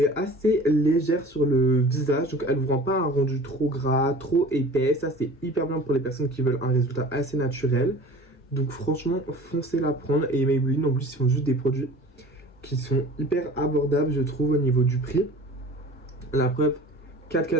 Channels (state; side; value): normal; both; correlation 0.43